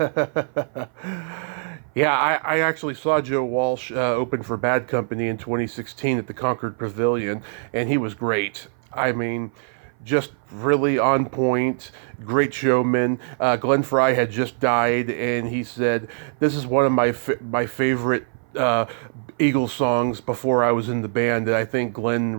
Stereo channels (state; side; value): silent; left; 58 dB below the other